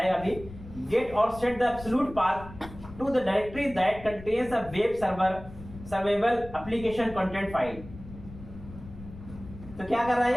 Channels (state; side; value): noise; left; rumble, 15 dB below the sound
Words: अभी, गेट और set the absolute path to the directory that contains a web server servable application content file. तो क्या कर रहा